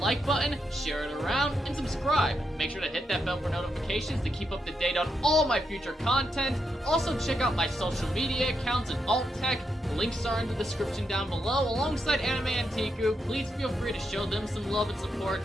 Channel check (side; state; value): both; normal; correlation 0.82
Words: button, share it around, and subscribe. Make sure to hit that bell for notifications to keep up to date on all my future content. Also check out my social media accounts and alt tech, The links are in the description down below, alongside Anime Anteiku. Please feel free to show them some love and support.